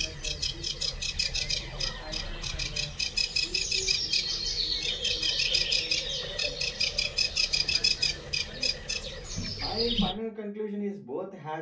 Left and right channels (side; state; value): both; identical; correlation 1.00